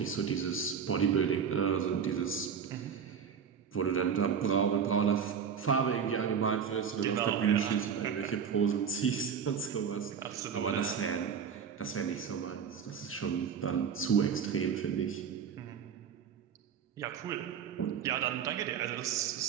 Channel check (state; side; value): quieter; left; 7.2 dB